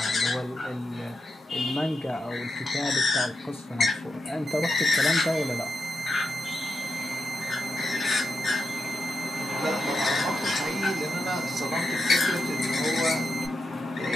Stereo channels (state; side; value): normal; both; correlation 0.86